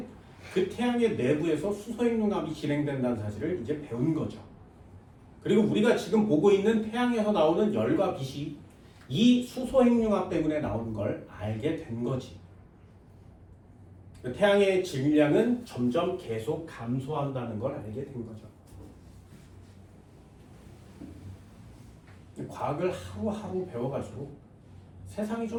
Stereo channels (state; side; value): identical; both; correlation 1.00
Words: 그 태양의 내부에서 수소핵융합이 진행된다는 사실을 이제 배운 거죠. 그리고 우리가 지금 보고 있는 태양에서 나오는 열과 빛이 이 수소핵융합 때문에 나오는 걸 알게 된 거지. 태양의 질량은 점점 계속 감소한다는 걸 알게 된 거죠. 과학을 하루하루 배워갈수록 세상이